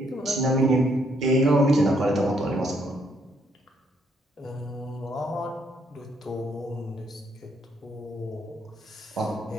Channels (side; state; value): both; normal; correlation 0.71